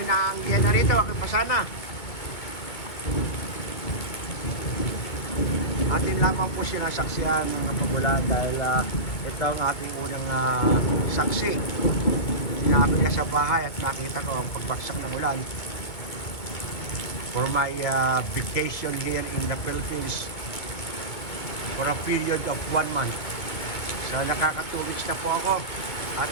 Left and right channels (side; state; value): right; late; 2.2 ms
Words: naanggihan na rito, ako'y pasana. Atin lamang po sinasaksihan ng pagulan dahil ito ang ating unang saksi. Sinabi ka sa bahay at nakita ko ang pagbagsak ng ulan for my vacation here in the Philippines for a period of 1 month. So nakaka-2 weeks na po ako at